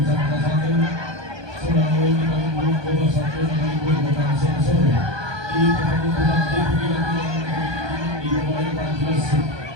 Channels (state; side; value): late; left; 1.2 ms